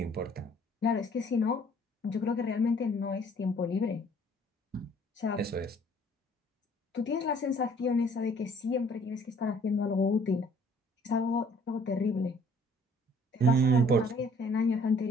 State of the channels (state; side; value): normal; both; correlation 0.58